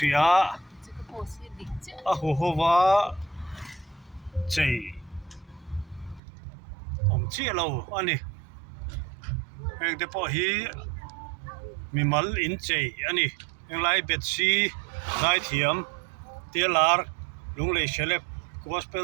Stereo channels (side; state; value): left; drops out; at 6.2 s